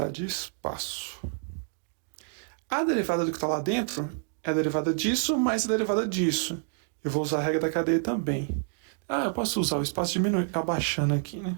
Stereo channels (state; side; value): silent; left; digital silence